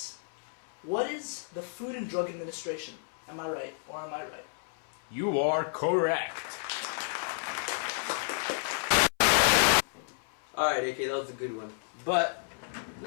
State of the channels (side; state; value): right; silent; 57 dB below the other